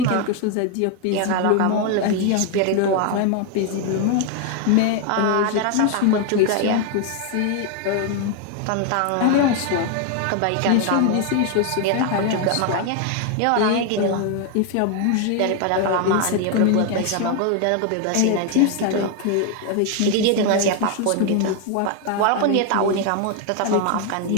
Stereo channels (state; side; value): different; both; correlation 0.01